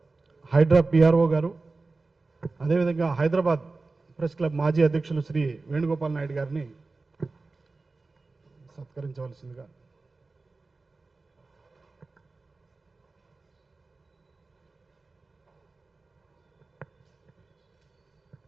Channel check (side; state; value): left; quieter; 3.7 dB